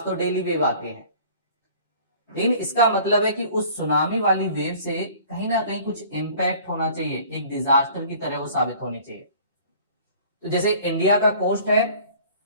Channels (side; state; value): both; inverted; correlation -0.50